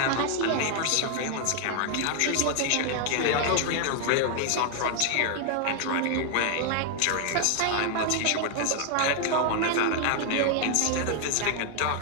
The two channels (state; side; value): different; both; correlation 0.00